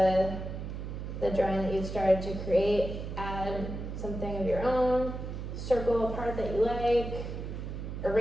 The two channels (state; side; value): noise; right; hum, 6 dB below the sound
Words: the drawing that you've started to create. Add something of your own, circle a part that you like,